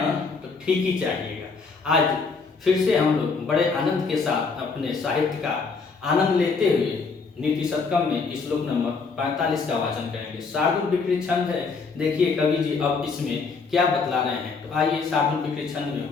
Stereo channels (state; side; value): quieter; right; 4.7 dB